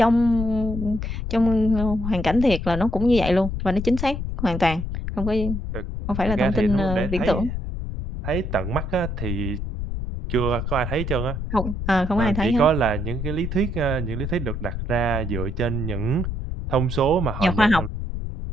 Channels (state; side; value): noise; left; rumble, 4 dB below the sound